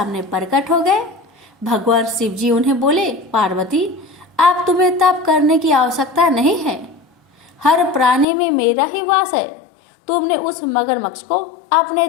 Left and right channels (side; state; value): right; drops out; at 8.2 s